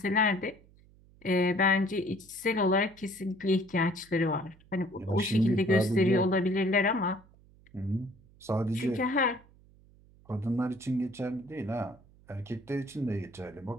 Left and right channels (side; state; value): right; noise; hum, 27 dB below the sound